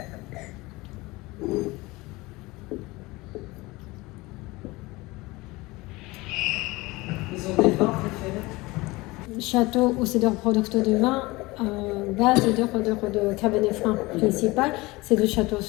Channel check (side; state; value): right; quieter; 21.8 dB